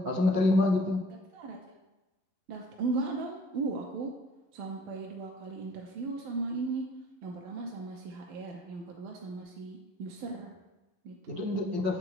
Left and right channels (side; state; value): left; late; 11 ms